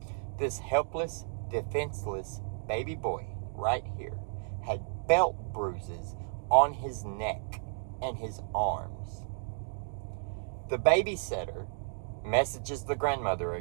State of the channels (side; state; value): left; quieter; 39.1 dB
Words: This helpless, defenseless baby boy right here had belt bruises on his neck and his arms. The babysitter messages the grandmother